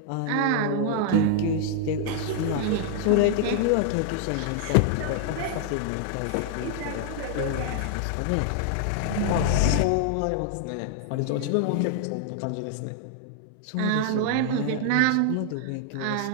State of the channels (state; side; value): different; both; correlation 0.00